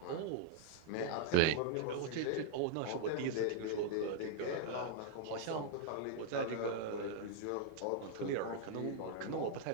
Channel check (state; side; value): different; both; correlation -0.01